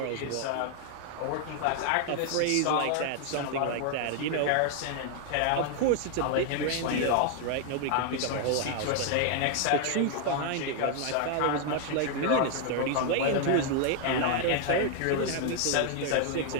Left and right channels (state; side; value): different; both; correlation 0.00